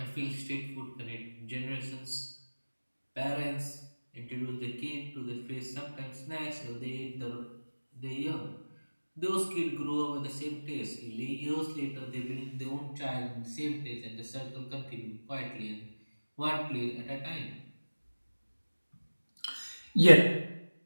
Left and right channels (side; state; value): both; inverted; correlation -1.00